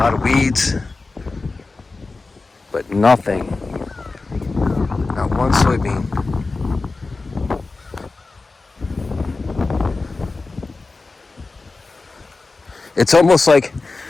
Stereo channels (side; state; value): right; quieter; 3.7 dB